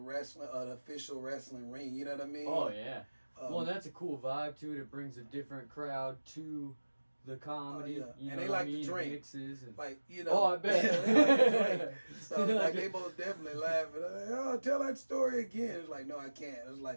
official wrestling ring. You know what I mean? Oh yeah. Well, that's a cool vibe to it. It brings a different crowd to the comedy. And they like to drink. Mixes and, Oh, I bet. they like to drink. So like they both definitely laughing. Like, oh, tell that story again. It's like, no, I can't. It's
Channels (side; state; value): both; inverted; correlation -1.00